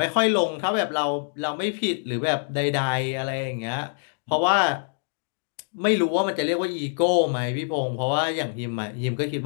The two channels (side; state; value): right; silent; digital silence